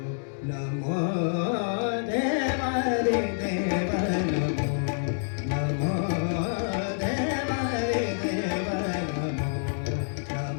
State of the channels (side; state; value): right; silent; digital silence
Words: नमो देवा रे देवा नमो नमो देवा रे देवा नमो